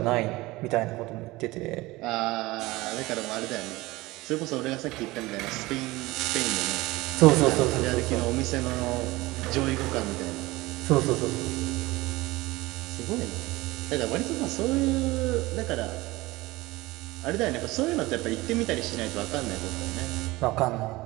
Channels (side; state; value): left; quieter; 20.4 dB